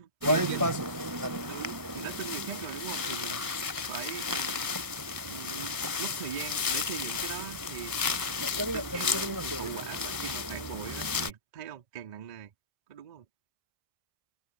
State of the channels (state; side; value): late; left; 1.5 ms